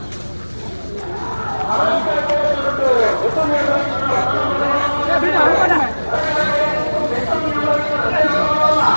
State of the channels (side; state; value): both; inverted; correlation -1.00